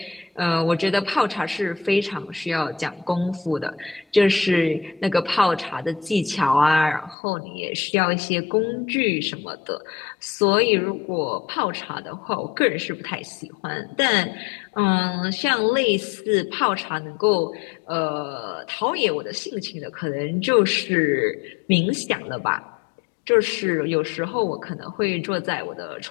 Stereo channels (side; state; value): right; drops out; at 7.2 s